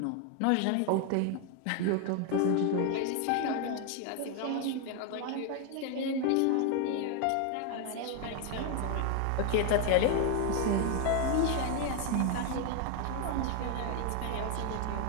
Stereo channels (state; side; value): different; both; correlation 0.01